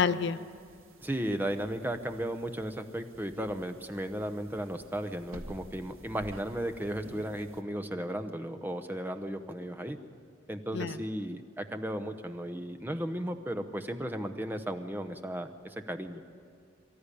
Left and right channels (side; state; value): both; normal; correlation 0.70